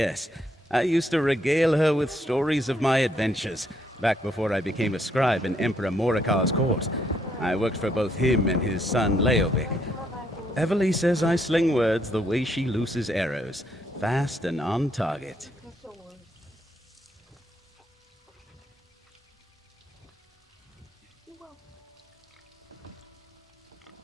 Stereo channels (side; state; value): both; normal; correlation 0.73